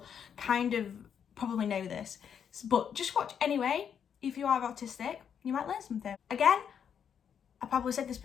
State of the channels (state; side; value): quieter; right; 7.9 dB